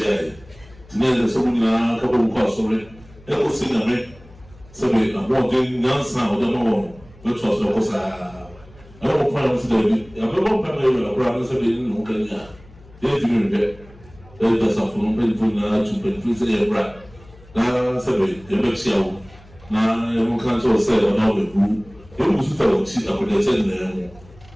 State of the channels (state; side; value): noise; left; hum, 24 dB below the sound